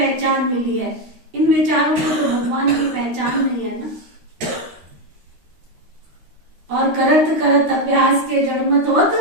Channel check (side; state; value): left; late; 13 ms